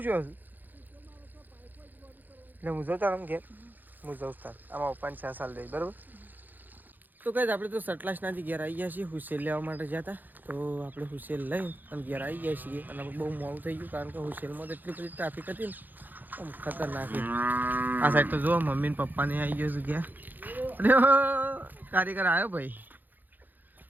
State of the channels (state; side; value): late; left; 0.087 ms